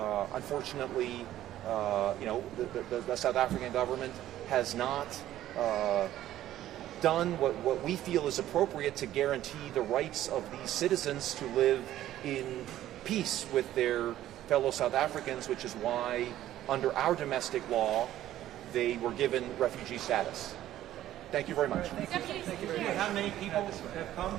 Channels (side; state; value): left; quieter; 13.1 dB